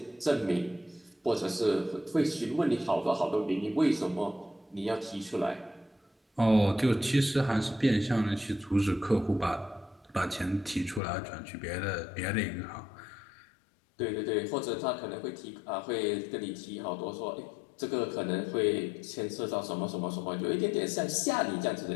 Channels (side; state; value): right; drops out; at 11.0 s